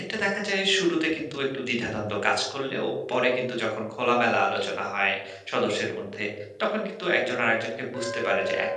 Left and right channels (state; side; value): identical; both; correlation 1.00